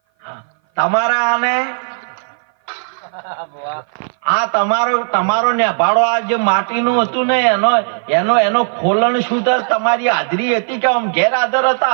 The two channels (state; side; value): silent; left; 58 dB below the other